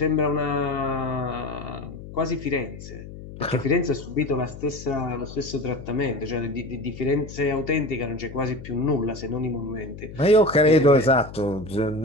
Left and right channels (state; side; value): noise; left; hum, 13 dB below the sound